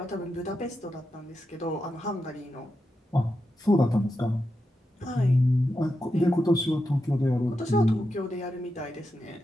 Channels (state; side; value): normal; both; correlation 0.88